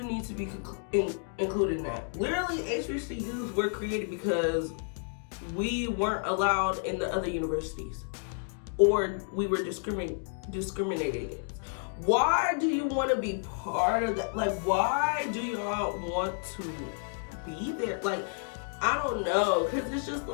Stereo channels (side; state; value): right; silent; 56 dB below the other